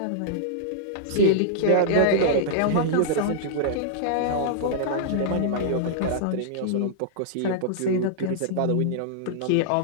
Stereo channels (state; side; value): different; both; correlation -0.02